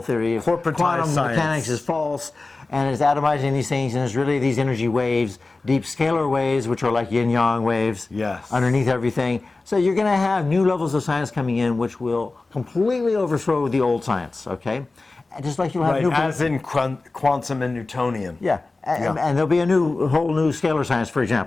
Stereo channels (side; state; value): right; quieter; 3.4 dB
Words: theory of quantum mechanics is false, and it's atomizing these things, and it's really these energy waves, deep scalar waves, which are like yin-yang waves, underneath everything. So you're going to have new levels of science coming in, which will completely overthrow the old science, okay? And just like you'll have new... as in quantum and Newtonian. And there'll be a whole new scalar science, for